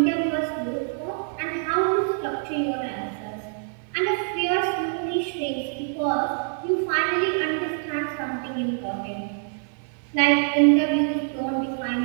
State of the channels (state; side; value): silent; left; digital silence